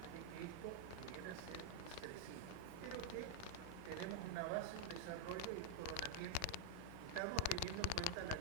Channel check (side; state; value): both; different; correlation -0.01